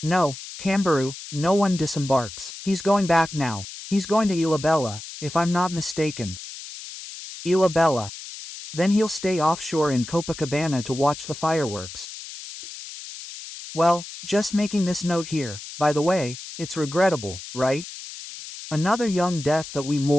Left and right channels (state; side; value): noise; left; hiss, 12 dB below the sound